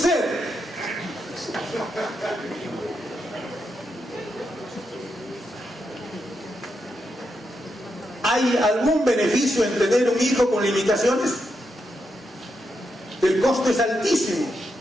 ¿Hay algún beneficio en tener un hijo con limitaciones? El costo es altísimo.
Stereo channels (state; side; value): normal; both; correlation 0.83